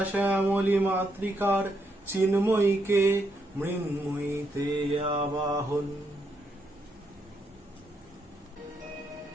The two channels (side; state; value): both; normal; correlation 0.78